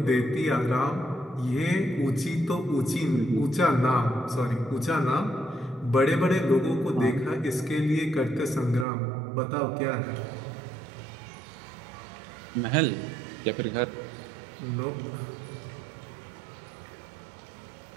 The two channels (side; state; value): left; drops out; at 8.8 s